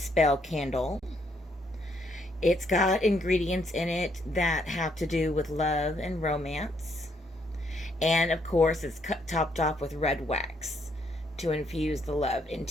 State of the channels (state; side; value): normal; both; correlation 0.72